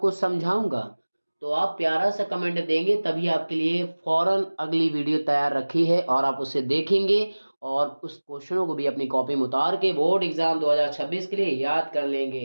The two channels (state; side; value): inverted; both; correlation -1.00